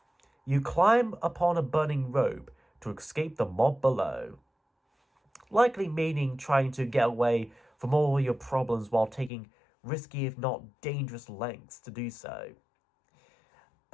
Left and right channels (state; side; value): drops out; right; at 9.3 s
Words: You climb upon a burning rope to escape the mob below. Likely meaning trying to get away from all your problems while taking risky if not dangerous lengths to do so.